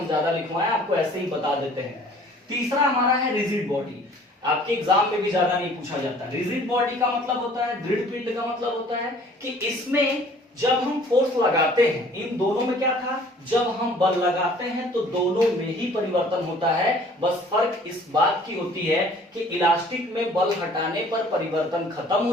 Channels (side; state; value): both; normal; correlation 0.53